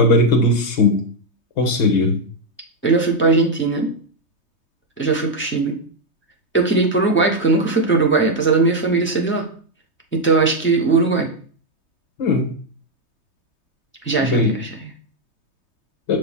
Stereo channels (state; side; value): late; right; 3.2 ms